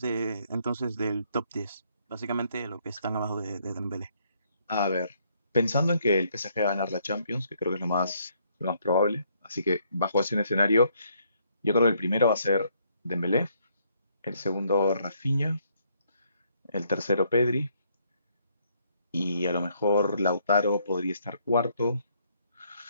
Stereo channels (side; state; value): both; inverted; correlation -0.70